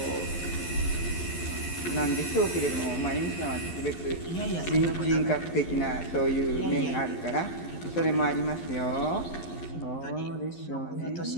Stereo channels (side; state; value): right; late; 11 ms